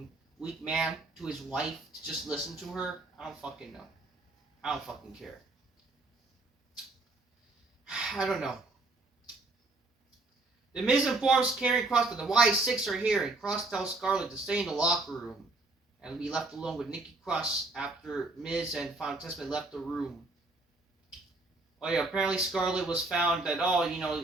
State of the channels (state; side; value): quieter; left; 3.1 dB